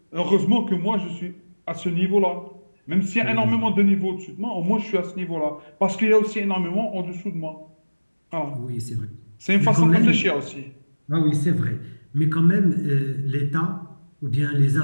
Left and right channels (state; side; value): inverted; both; correlation -1.00